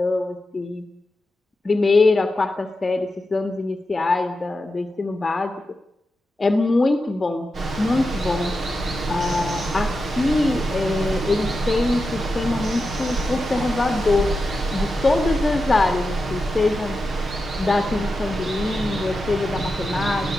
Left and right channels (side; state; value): both; normal; correlation 0.90